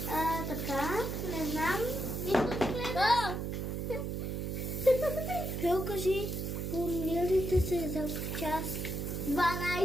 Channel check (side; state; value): right; noise; hum, 3 dB below the sound